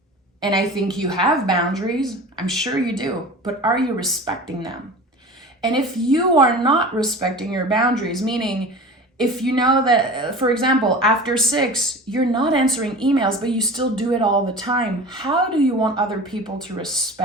And I think you have boundaries. I'm sure you do. But are you respecting them? And if you are not respecting your boundaries, meaning if you know that, for example, after 6, you're not answering emails, but you still do it all the time, how do you want other people to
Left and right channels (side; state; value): both; normal; correlation 0.36